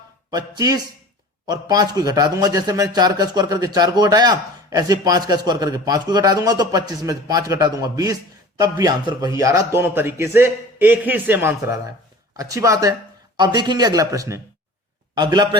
25 और 5 को घटा दूंगा। जैसे मैंने 4 का स्क्वायर करके 4 को घटाया, ऐसे 5 का स्क्वायर करके 5 को घटा दूंगा, तो 25 में 5 घटा दूंगा 20। तब भी आंसर वही आ रहा, दोनों तरीके से एक ही सेम आंसर आ रहा है। अच्छी बात है। अब देखेंगे अगला प्रश्न। अगला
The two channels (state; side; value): normal; both; correlation 0.41